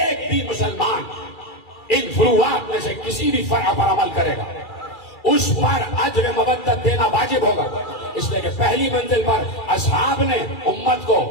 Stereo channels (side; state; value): right; late; 2.3 ms